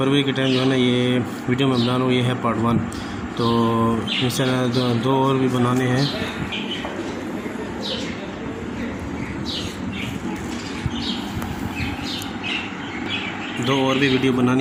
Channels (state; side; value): identical; both; correlation 1.00